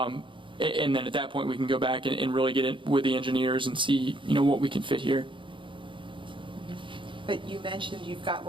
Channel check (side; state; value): left; late; 0.24 ms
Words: then at that point, we can go back and really get in with the engineers and see, what we can fit here. But you mentioned you've got